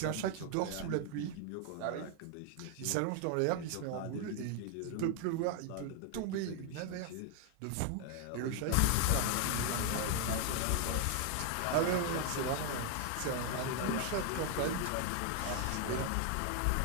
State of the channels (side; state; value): both; different; correlation 0.00